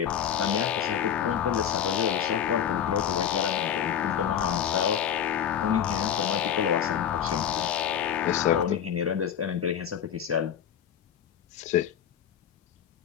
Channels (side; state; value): right; quieter; 9.1 dB